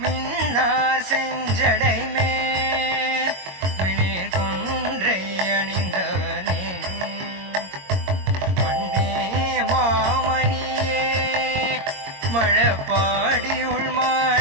மின்னார் செஞ்சடைமே பாடியுள்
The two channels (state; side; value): late; left; 22 ms